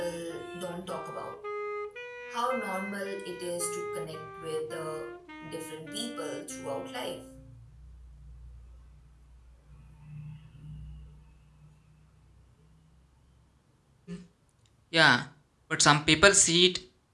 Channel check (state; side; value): identical; both; correlation 1.00